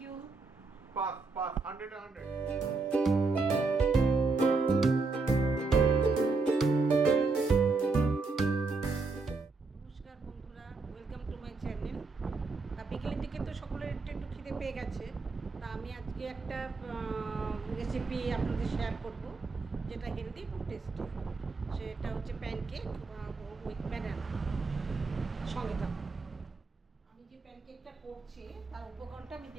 you. Pass pass, 100 100। নমস্কার বন্ধুরা, ওয়েলকাম টু মাই চ্যানেল। বিকেলের দিকে তো সকলের একটু একটু খিদে পেয়ে গেছে, তা আমি আজকে একটা রেসিপি আপনাদের শেয়ার করব, যেটা হেলদি এবং টেস্টি। সেটা হচ্ছে প্যানকেক উইথ ব্যানানা। সঙ্গে থাকুন। আমি যে প্যানকেকটা করছি তার উপকরণটা আমি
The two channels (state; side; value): quieter; left; 4.0 dB